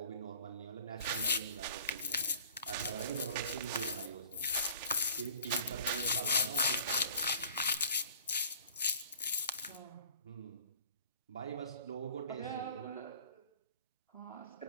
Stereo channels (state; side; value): inverted; both; correlation -0.48